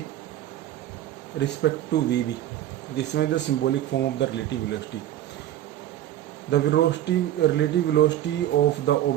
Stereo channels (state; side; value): quieter; left; 12.6 dB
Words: respect to VB. This is the symbolic form of the relative velocity. The relative velocity of the